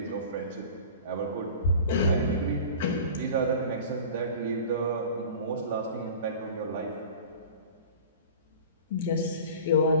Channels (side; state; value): both; inverted; correlation -0.39